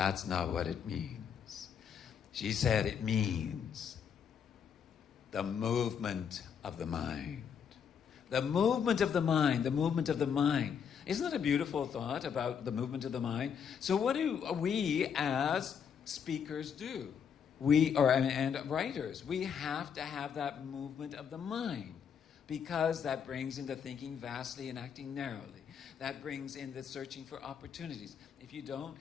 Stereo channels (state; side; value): quieter; right; 7.4 dB